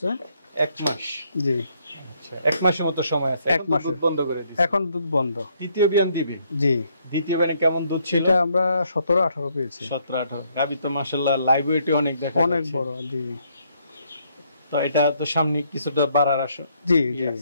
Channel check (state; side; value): inverted; both; correlation -0.71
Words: 1 মাস। জি। 1 মাসের মতো সময় আছে। 1 মাস দুধ বন্ধ করে দিয়েছে। এখন দুধ বন্ধ। তৃতীয় বিয়ান দিবে? জি। দ্বিতীয় বিয়ানে কেমন দুধ ছিল? এটা আমরা 17-18 পেয়েছি। 17-18। গাবি তো মাশাআল্লাহ লাইভ ওয়েটে অনেক দেখা যাচ্ছে। অনেক বড়। জি। তো এটা তো সামনে কিছুটা বাড়ার আশা। জি জি।